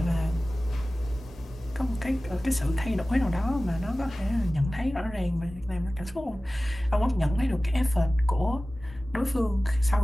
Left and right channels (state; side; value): normal; both; correlation 0.97